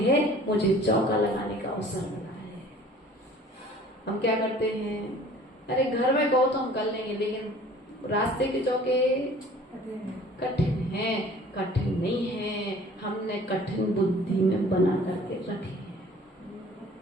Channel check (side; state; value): both; normal; correlation 0.49